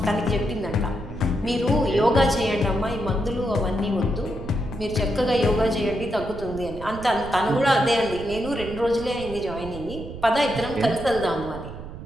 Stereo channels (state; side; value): noise; right; rumble, 12 dB below the sound